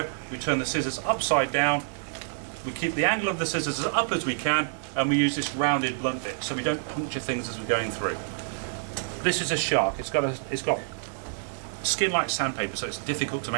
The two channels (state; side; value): silent; left; 60 dB below the other